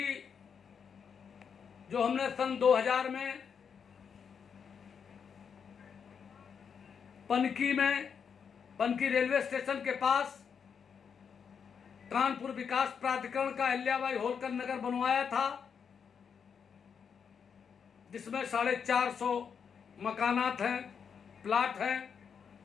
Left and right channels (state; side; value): quieter; right; 6.8 dB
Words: जो हमने सन 2000 में पनकी रेलवे स्टेशन के पास कानपुर विकास प्राधिकरण का अहिल्याबाई होलकर नगर बनवाया था, जिसमें 450 मकानात हैं, प्लाट हैं।